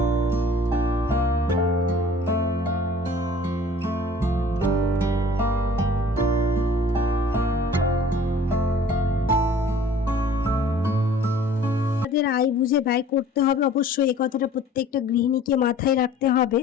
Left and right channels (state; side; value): normal; both; correlation 0.50